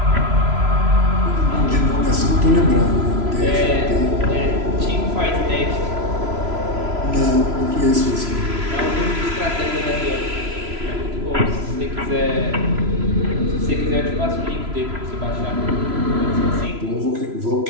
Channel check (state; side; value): late; left; 3.0 ms